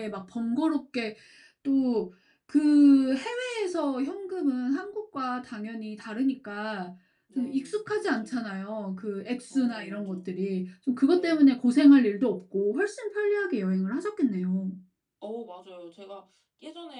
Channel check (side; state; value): both; identical; correlation 1.00